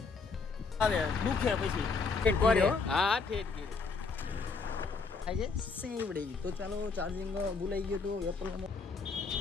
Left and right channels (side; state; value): right; quieter; 4.6 dB